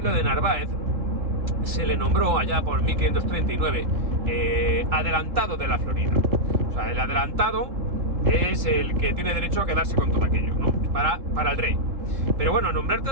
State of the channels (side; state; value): left; late; 3.7 ms